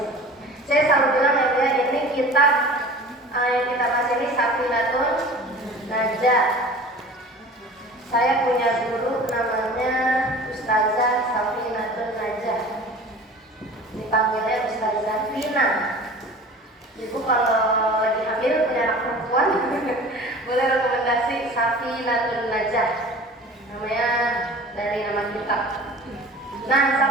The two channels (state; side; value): normal; both; correlation 0.41